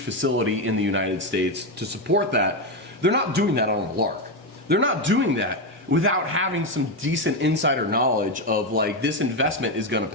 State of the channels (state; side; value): normal; both; correlation 0.10